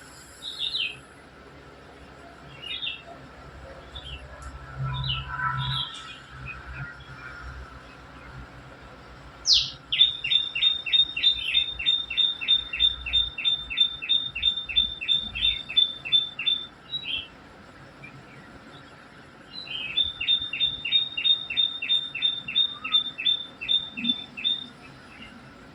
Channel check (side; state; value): both; identical; correlation 1.00